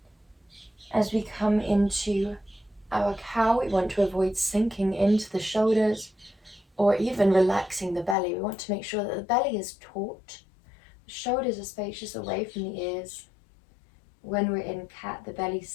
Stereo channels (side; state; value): right; drops out; at 8.2 s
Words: As we come into our cow, we want to avoid sinking into the shoulders or even relaxing the belly. We want to make sure that the belly is taut. The shoulders are spacious away from the ears. When we're in cat, the belly